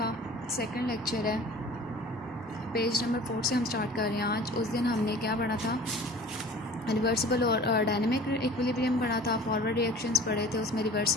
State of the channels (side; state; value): both; normal; correlation 0.44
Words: सेकंड लेक्चर है। पेज नंबर 4 से हम स्टार्ट कर रहे हैं। आज उस दिन हमने क्या पढ़ा था, रिवर्सिबल और डायनेमिक इक्विलिब्रियम पढ़ा था, फॉरवर्ड रिएक्शंस पढ़े थे, उसमें